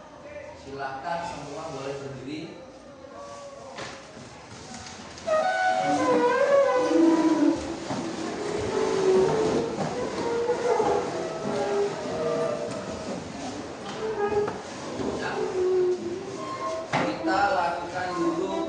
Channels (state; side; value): identical; both; correlation 1.00